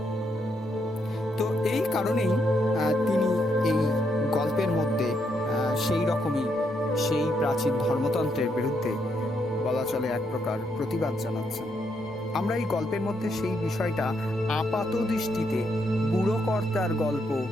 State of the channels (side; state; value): both; normal; correlation 0.77